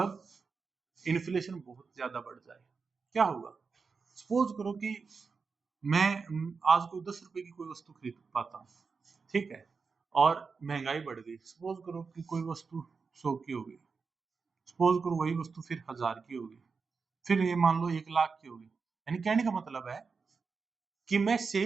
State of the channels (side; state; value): left; quieter; 5.0 dB